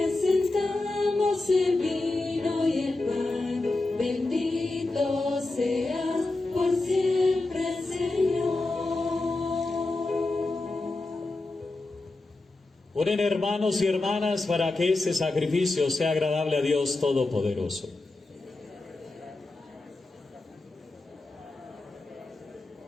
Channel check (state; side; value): quieter; right; 3.1 dB